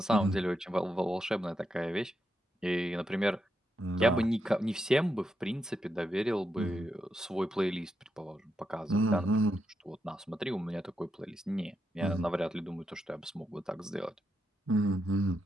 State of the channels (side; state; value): both; normal; correlation 0.83